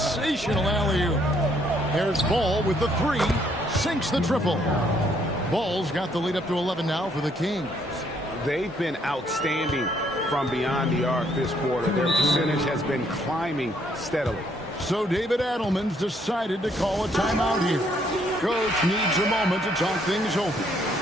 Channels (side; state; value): both; normal; correlation 0.68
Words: alley-oop. Here's Ball with the three. Sinks the triple. Ball's got the lead up to 11 now for the Kings. They've been outstanding from beyond the arc this quarter. Their percentage has been climbing steadily. So David Adelman's decided to call a timeout here. Coach needs a moment to talk things over.